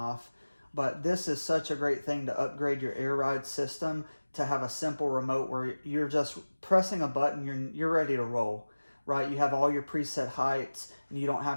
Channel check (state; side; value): inverted; both; correlation -1.00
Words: But this is such a great thing to upgrade your air ride system, to have a simple remote where you're just pressing a button, you're ready to roll, right? You have all your preset heights and you don't